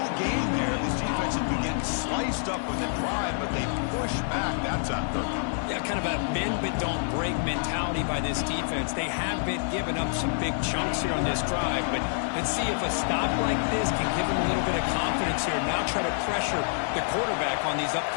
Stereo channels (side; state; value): right; silent; digital silence